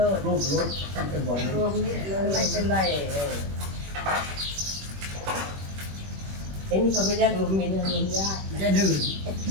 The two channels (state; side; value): late; left; 21 ms